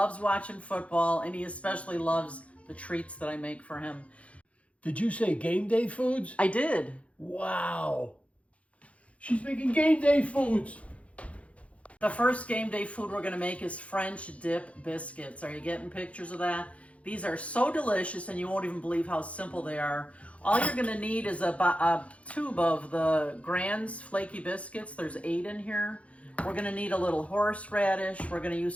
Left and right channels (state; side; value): late; right; 0.064 ms